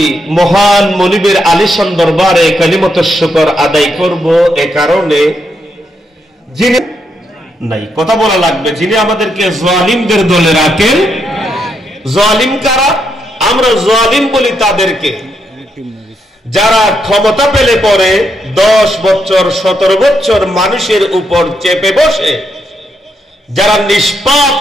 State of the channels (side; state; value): both; normal; correlation 0.79